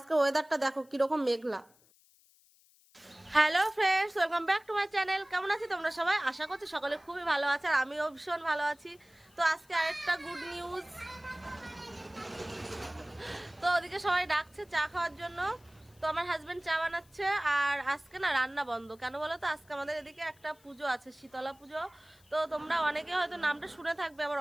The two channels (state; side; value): noise; left; hiss, 30 dB below the sound